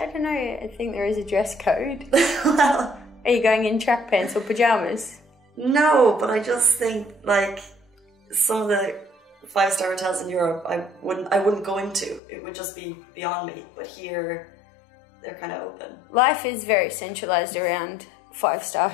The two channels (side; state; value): right; drops out; at 12.2 s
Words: don't know. I think there is a dress code. Well, are you going in track pants or pajamas? No, but I just think like some of the 5-star hotels in Europe, I wouldn't go into. It would just be beyond me. But here, they're kind of open. Life is very centralized around 5-star